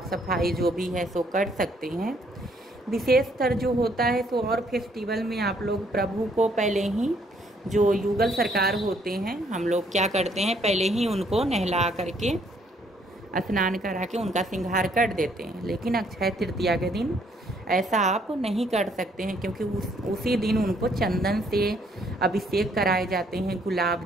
सफाई जो भी है सो कर सकते हैं। विशेषतर जो होता है तो और फेस्टिवल में आप लोग प्रभु को पहले ही, जो युगल सरकार होते हैं, हम लोग क्या करते हैं, पहले ही उनको नहला करके स्नान करा के उनका श्रृंगार कर देते हैं। लेकिन अक्षय तृतीया के दिन ऐसा आप नहीं कर सकते हैं, क्योंकि उसी दिन उनको चंदन से अभिषेक कराए जाते हैं,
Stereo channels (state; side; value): normal; both; correlation 0.67